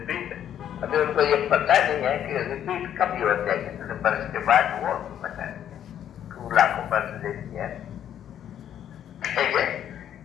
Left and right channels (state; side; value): quieter; right; 10.1 dB